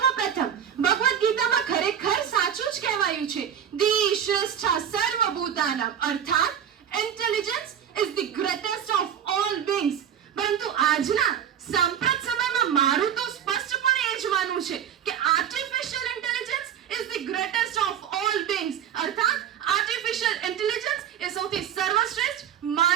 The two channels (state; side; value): quieter; left; 9.1 dB